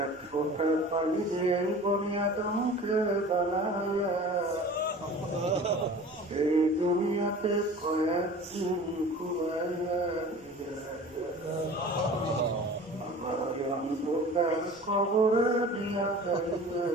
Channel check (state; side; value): normal; both; correlation 0.41